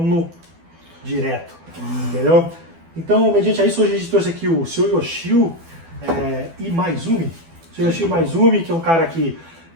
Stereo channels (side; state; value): left; late; 12 ms